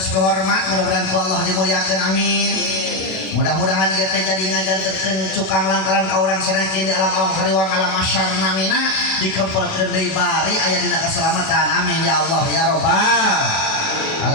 hormat mudah-mudahan ku Allah dimuliakeun amin. Mudah-mudahan ieu teh jadi ngajanterkeun cukang lantaran ka urang sanekin di alam-alam hariwang alam masyar namina dikempelkeun deui bari aya dina keselamatan amin ya Allah ya rabbal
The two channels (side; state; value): right; late; 38 ms